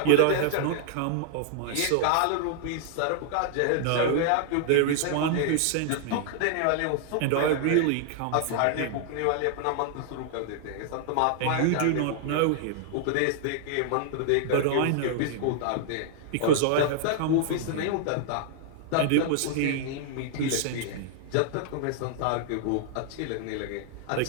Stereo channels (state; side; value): different; both; correlation 0.00